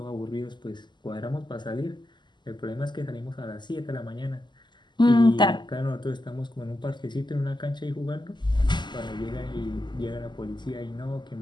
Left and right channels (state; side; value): late; right; 0.21 ms